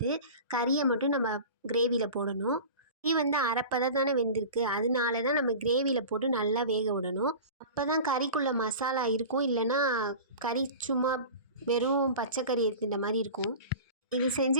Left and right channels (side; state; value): both; inverted; correlation -0.35